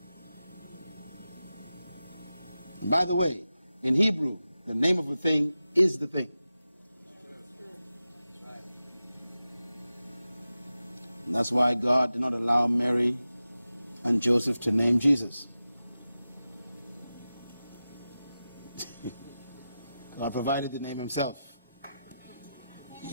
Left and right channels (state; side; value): inverted; both; correlation -0.93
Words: And by the way, in Hebrew, the name of a thing is the thing. And that's why God did not allow Mary and Joseph to name Jesus. God provided the name himself.